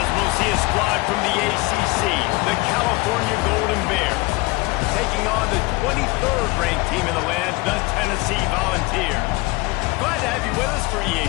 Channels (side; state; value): right; quieter; 23.6 dB